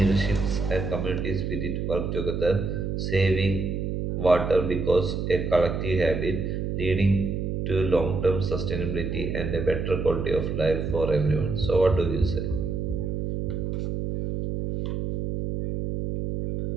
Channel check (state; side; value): noise; right; hum, 2 dB below the sound